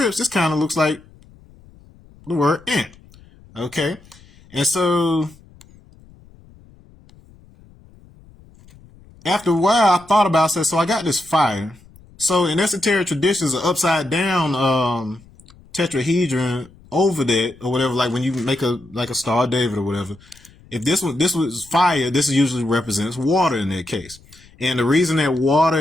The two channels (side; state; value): left; noise; rumble, 25 dB below the sound